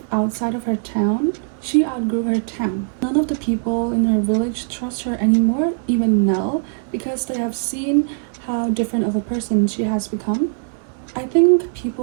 outside of her town, she outgrew her town. None of the people in her village trust her anymore, even Nell, because they have seen how different of a person she has become. I think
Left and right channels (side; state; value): left; silent; digital silence